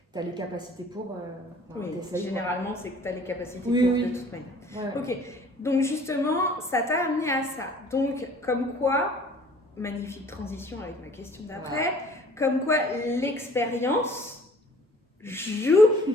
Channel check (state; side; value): normal; both; correlation 0.52